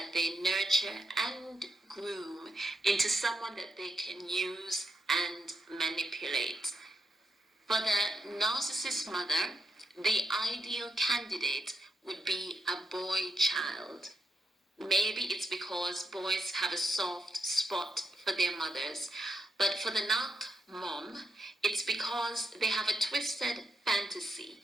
they nurture and groom into someone that they can use and manipulate. For the narcissist mother, the ideal candidate would be a boy child. Maybe it's because boys have a soft spot for their mothers, but for the narc mom, it's because they have a twisted fantasy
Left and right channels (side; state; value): both; normal; correlation 0.83